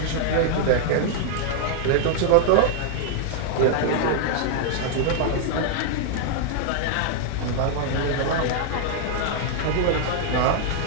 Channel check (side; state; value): both; different; correlation -0.01